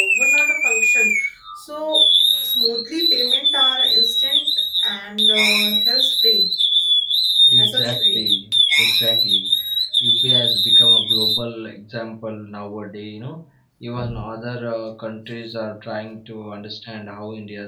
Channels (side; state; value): both; identical; correlation 1.00